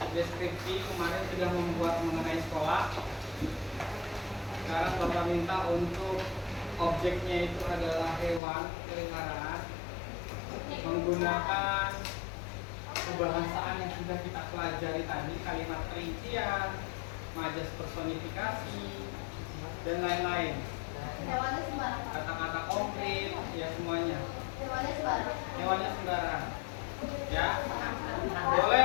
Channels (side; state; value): right; drops out; at 8.4 s